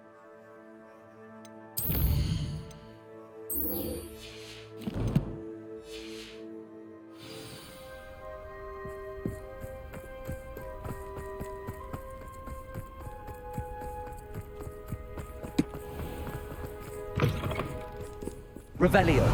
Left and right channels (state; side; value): identical; both; correlation 1.00